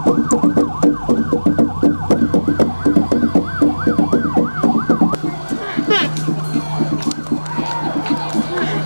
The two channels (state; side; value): inverted; both; correlation -1.00